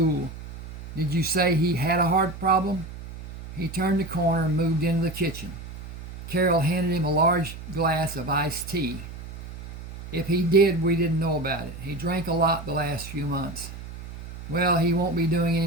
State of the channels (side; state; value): right; noise; hum, 12 dB below the sound